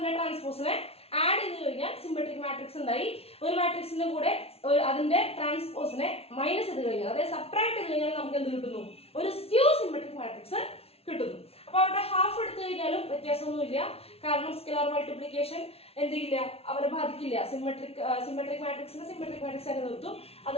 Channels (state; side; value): late; right; 0.29 ms